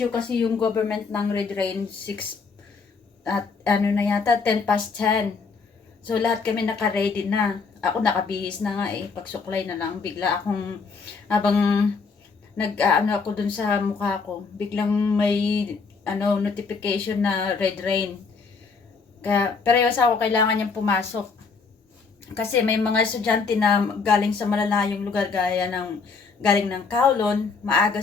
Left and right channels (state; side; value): quieter; right; 4.9 dB